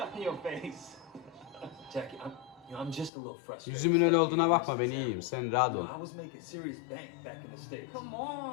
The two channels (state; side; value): drops out; right; at 3.1 s